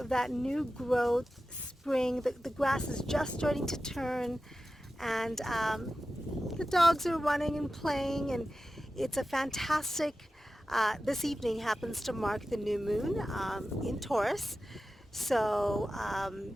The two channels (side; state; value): both; normal; correlation 0.94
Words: that new growth, spring. The grass is just starting to turn, and the dogs are running and playing, and it's a fantastic, this evening happens to mark the new moon in Taurus. So